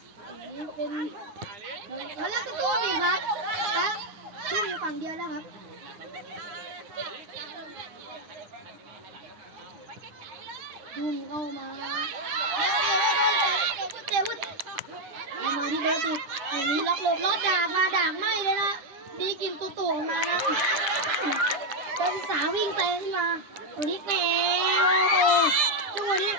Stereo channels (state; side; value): late; left; 10 ms